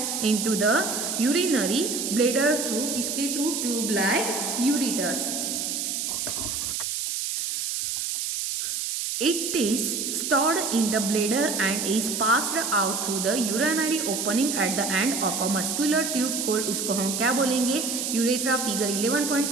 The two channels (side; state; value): right; noise; hiss, 2 dB below the sound